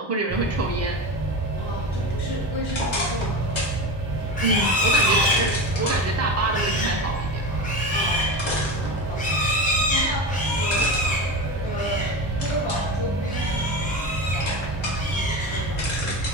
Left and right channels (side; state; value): both; normal; correlation 0.24